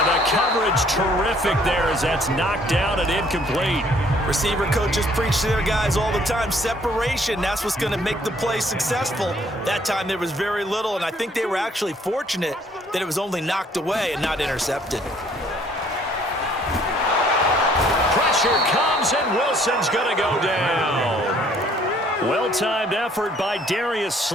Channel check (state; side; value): normal; both; correlation 0.61